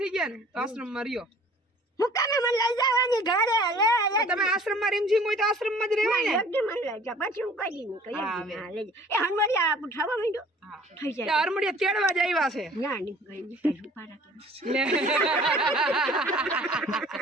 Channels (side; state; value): both; normal; correlation 0.51